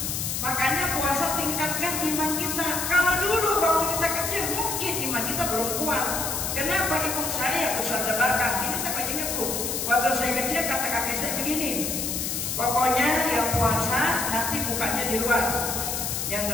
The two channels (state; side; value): noise; left; hiss, 2 dB below the sound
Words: Makanya puasa tingkatkan iman kita. Kalau dulu waktu kita kecil mungkin iman kita belum kuat. Kenapa ibu saya Ustazah Barkah? Ini saya ingat bu, waktu saya kecil kata kakek saya begini, pokoknya yang puasa nanti bukanya di luar, yang